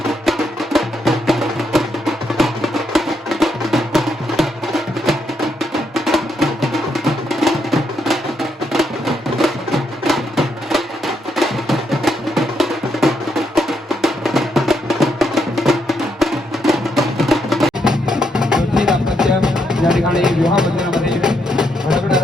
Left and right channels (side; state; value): both; normal; correlation 0.78